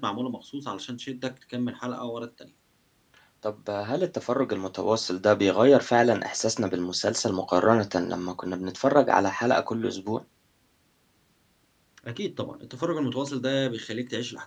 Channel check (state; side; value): identical; both; correlation 1.00